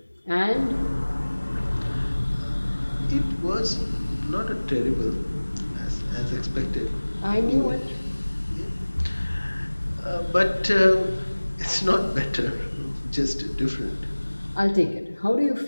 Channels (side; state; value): both; inverted; correlation -1.00